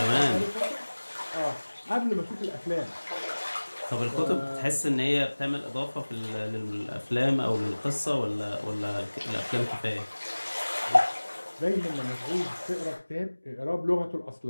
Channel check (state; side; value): inverted; both; correlation -1.00